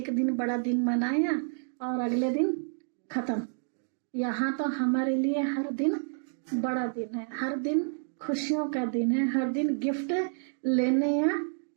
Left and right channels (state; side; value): silent; left; digital silence